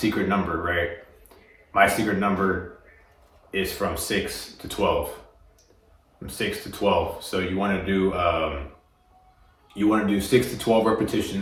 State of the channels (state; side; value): identical; both; correlation 1.00